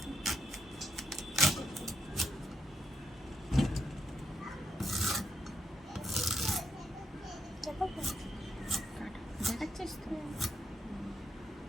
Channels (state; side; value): normal; both; correlation 0.78